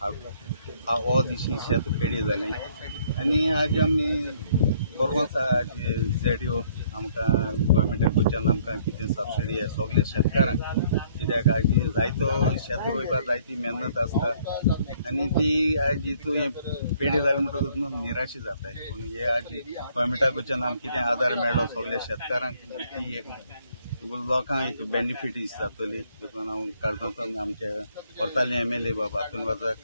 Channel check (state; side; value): inverted; both; correlation -0.63